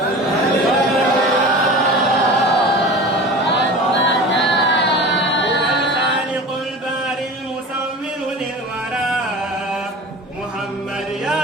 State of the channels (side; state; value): both; normal; correlation 0.35